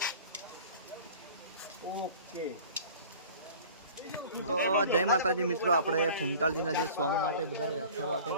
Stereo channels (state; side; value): inverted; both; correlation -0.44